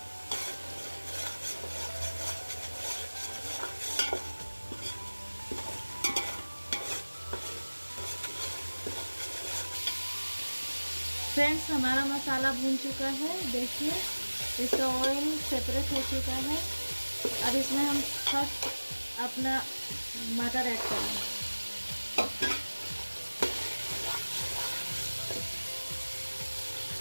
फ्रेंड्स हमारा मसाला भून चुका है। देखिए इसका ऑयल सेपरेट हो चुका है। अब इसमें हम फर्स्ट अपना मटर ऐड करेंगे।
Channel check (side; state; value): both; inverted; correlation -1.00